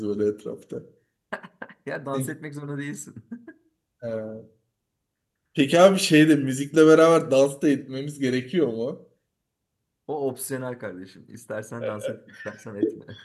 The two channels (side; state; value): both; identical; correlation 1.00